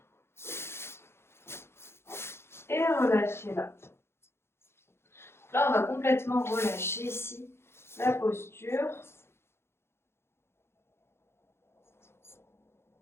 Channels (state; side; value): late; right; 0.12 ms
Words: et relâchez là. Là, on va complètement relâcher ici la posture.